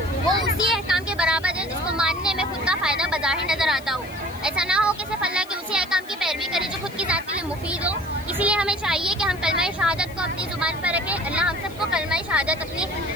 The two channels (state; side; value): noise; left; hiss, 22 dB below the sound